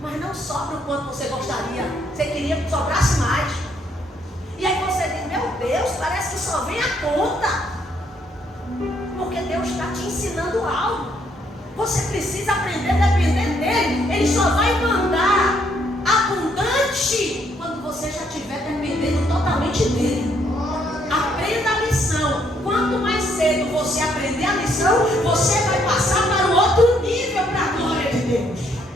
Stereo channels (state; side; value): normal; both; correlation 0.70